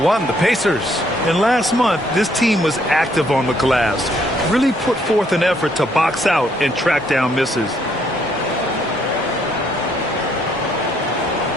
the Pacers. And last month, this team was active on the glass. Really put forth an effort to box out and track down misses.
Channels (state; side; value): normal; both; correlation 0.69